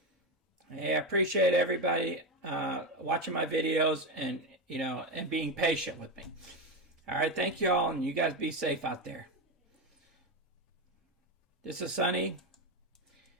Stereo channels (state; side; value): normal; both; correlation 0.14